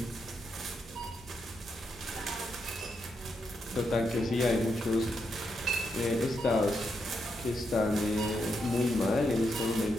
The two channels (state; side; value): normal; both; correlation 0.82